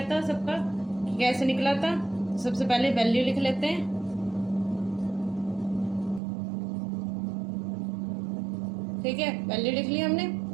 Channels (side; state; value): left; drops out; at 6.2 s